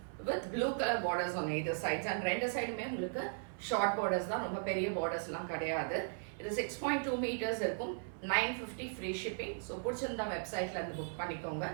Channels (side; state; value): left; silent; 53 dB below the other